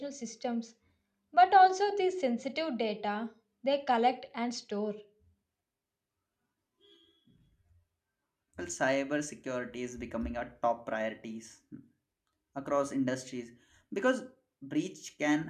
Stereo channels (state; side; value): identical; both; correlation 1.00